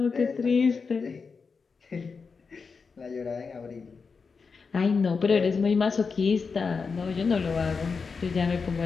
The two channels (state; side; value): quieter; right; 5.1 dB